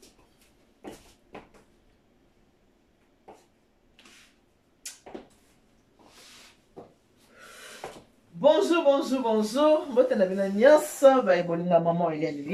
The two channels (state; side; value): identical; both; correlation 1.00